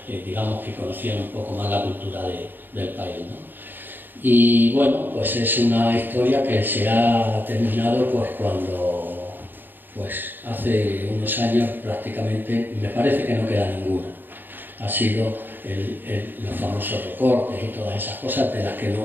digamos que conocían un poco más la cultura del país, ¿no? Y bueno, pues es una historia que se ha terminado pues cuando, pues hace unos años prácticamente, me parece que no queda ninguna. Ha sido los famosos recortes y todas esas cosas de las que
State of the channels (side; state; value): left; late; 0.092 ms